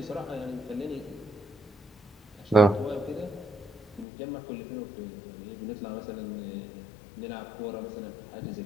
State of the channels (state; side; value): drops out; right; at 4.0 s